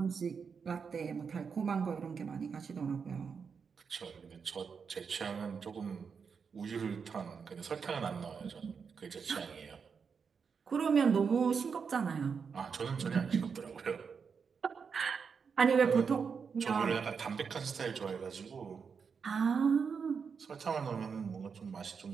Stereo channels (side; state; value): left; quieter; 6.0 dB